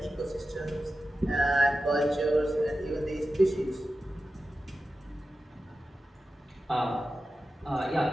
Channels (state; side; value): normal; both; correlation 0.93